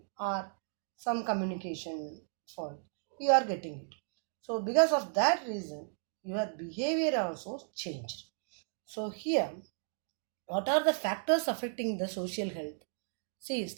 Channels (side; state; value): left; silent; digital silence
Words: or some communication fault. You are getting it. So because of that reason, your behavior also changed. So here, what are the factors affecting the social health? See,